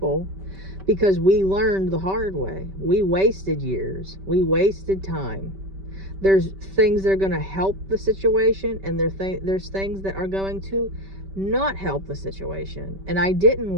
because we learned the hard way. We wasted years. We wasted time. There's things that are going to help the situation, and there's things that are going to not help the situation. And I didn't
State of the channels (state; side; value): late; left; 5.2 ms